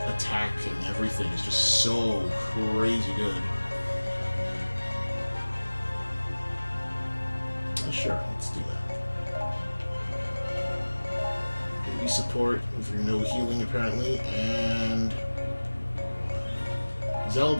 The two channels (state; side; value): inverted; both; correlation -1.00